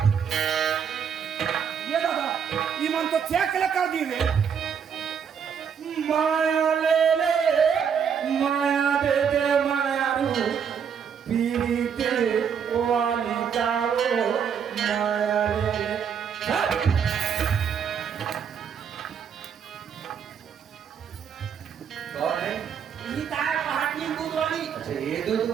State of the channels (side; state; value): left; quieter; 7.4 dB